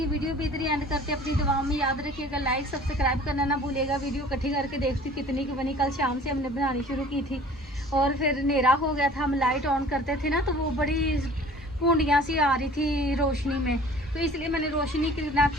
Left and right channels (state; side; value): normal; both; correlation 0.48